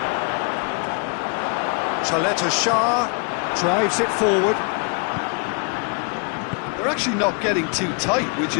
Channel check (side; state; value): right; quieter; 36.9 dB